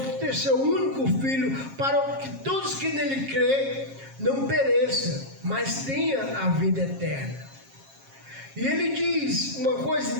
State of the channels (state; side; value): late; left; 7.4 ms